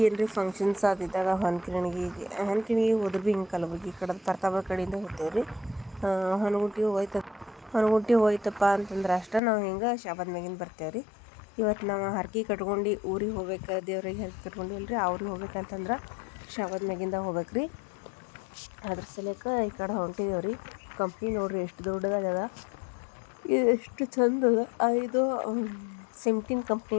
ಏನರ ಫಂಕ್ಷನ್ಸ್ ಆದಿದ್ದಾಗ ಹೊನ್ಕಿಣಿಗೆ ಹೋದ್ರೆ ಭೀ ಹಿಂಗೆ ಕಲಬುರ್ಗಿ ಕಡೆ ಪ್ರತಾಪ ಕಡೆಯಿಂದ ಹೋಗ್ತೇವೆ ರೀ. ಹೊನಗುಂಟಿ ಹೋಯ್ತಪ್ಪ ಅಂತಂದ್ರೆ ಅಷ್ಟೇ ನಾವು ಹಿಂಗೆ ಶಾಬಾದ್ ಮ್ಯಾಗಿಂದ ಬರ್ತೇವೆ ರೀ. ಇವತ್ತು ನಾವು ಹರ್ಕೆ ಕಟ್ಕೊಂಡು ಊರಿಗೆ ಹೋಗ್ಬೇಕು, ದೇವ್ರಿಗೆ ಹರ್ಕೆ ಕಟ್ಕೊಂಡಿಲ್ಲ ರೀ. ಅವ್ರಿಗೆ ಹೋಗ್ಬೇಕಂತಂದ್ರೆ ಶಾಬಾದ್ ಮ್ಯಾಗಿಂದ ಹೋಗ್ಬೇಕು ರೀ. ಅದ್ರ ಸಲಕ್ಕೆ ಈ ಕಡೆ ಹೊಂಟಿದ್ದೇವೆ ರೀ. ಕಂಪ್ನಿ ನೋಡ್ರಿ ಎಷ್ಟು ದೊಡ್ಡದಾಗದ, ಇದು ಎಷ್ಟು ಚಂದ ಅದ. ಇದು ಸಿಮ್ಟಿನ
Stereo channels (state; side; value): drops out; right; at 9.4 s